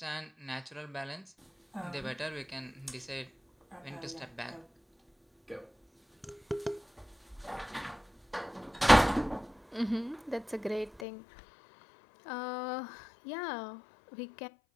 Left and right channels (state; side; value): drops out; right; at 11.1 s